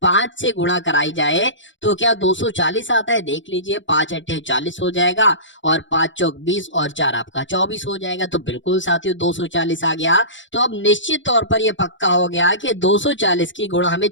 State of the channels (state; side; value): late; right; 0.55 ms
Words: 5 से गुणा कराई जाए तो क्या 240 आता है, देख लीजिए 5 अट्ठे 40 हो जाएगा, और 5 चौक 20 और 4 आपका 24 हो जाएगा। तो बिल्कुल साथियों 240 आ गया। तो अब निश्चित तौर पर यह पक्का हो गया कि 240 की गुणा हमें